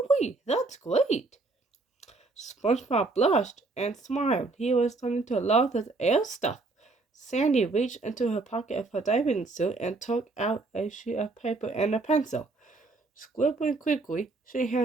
that's great! SpongeBob blushed and smiled. He was starting to love this air stuff. Sandy reached into her pocket of her diving suit and took out a sheet of paper and a pencil. Scribbling quickly, she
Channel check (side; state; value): left; quieter; 3.5 dB